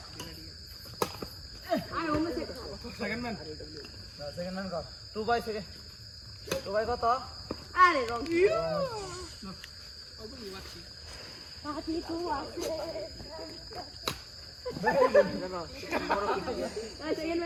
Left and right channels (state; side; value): identical; both; correlation 1.00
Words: আয় ওমে সেকেন্ড ম্যান সেকেন্ড ম্যান কর 2 বাই সেকেন্ড 2 বাই কত আরে রং পাতি তো আছে এই সেকেন্ড